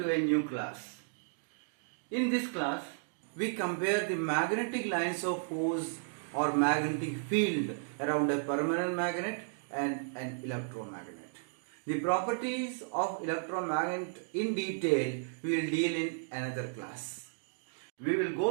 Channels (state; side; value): silent; left; digital silence